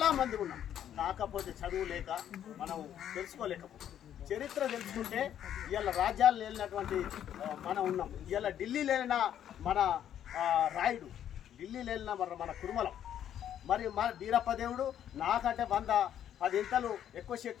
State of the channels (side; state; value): right; quieter; 10.2 dB